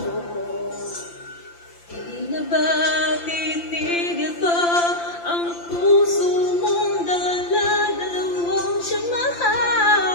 Di na ba titigil pa ang puso mong dala-dalawang siyang mahal?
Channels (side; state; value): right; late; 5.8 ms